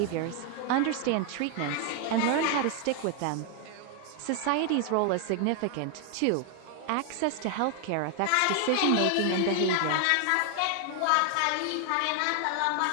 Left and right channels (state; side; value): different; both; correlation 0.00